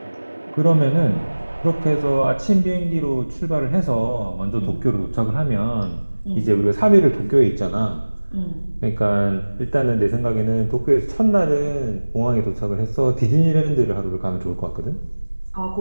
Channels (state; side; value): inverted; both; correlation -1.00